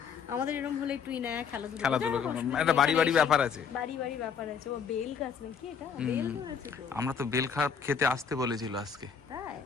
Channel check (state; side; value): quieter; right; 6.6 dB